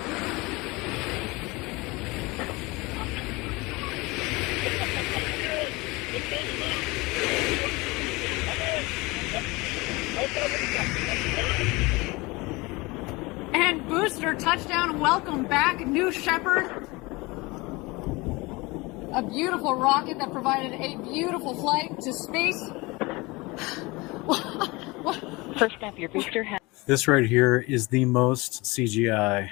And booster touchdown. Welcome back, New Shepard. A beautiful rocket that provided a beautiful flight to space. First up, your booster has. This right here is the most CGI,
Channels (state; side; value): quieter; right; 23.8 dB